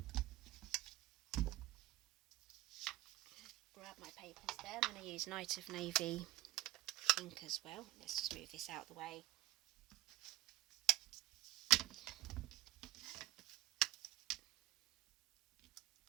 Grab my papers there. I'm going to use Night of Navy ink as well. Let's just move this out of the way.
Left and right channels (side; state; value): left; quieter; 16.8 dB